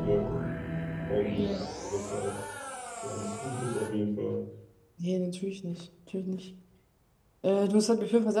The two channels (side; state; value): both; identical; correlation 1.00